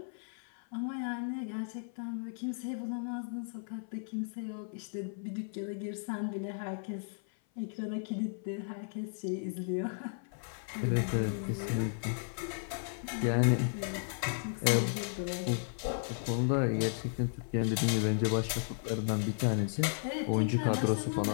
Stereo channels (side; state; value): right; silent; 55 dB below the other